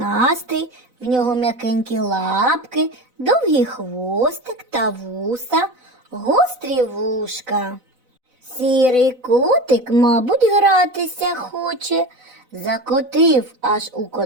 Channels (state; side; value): late; left; 4.0 ms